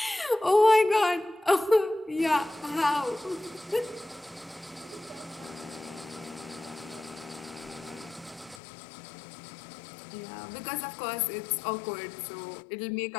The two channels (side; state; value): right; drops out; at 8.6 s